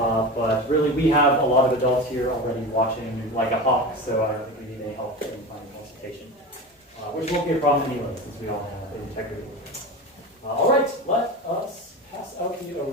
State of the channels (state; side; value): normal; both; correlation 0.27